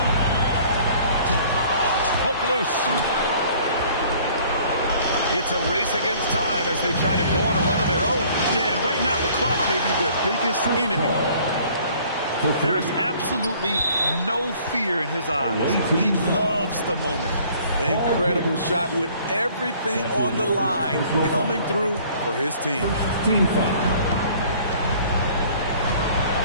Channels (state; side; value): inverted; both; correlation -0.55